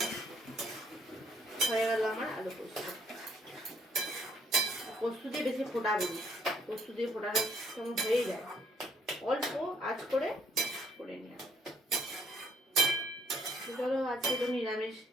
হয়ে গেল আমার আলু পোস্ত। পোস্ত দিয়ে বেশি ফোটাবো না, পোস্ত দিয়ে ফোটানো কেমন হয়ে যায়, অল্প আঁচ করে করে নিয়ে। চলো, আজকে তো নিরামিষ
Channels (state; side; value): normal; both; correlation 0.66